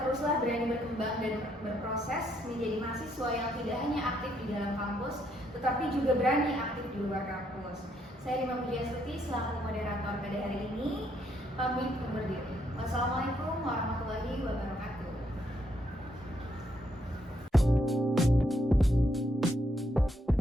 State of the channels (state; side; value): normal; both; correlation 0.74